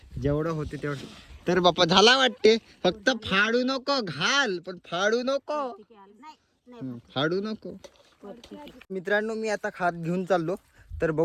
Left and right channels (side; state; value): both; identical; correlation 1.00